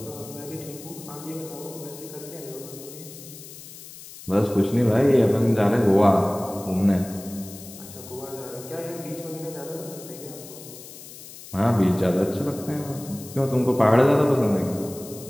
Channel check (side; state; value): left; noise; hiss, 16 dB below the sound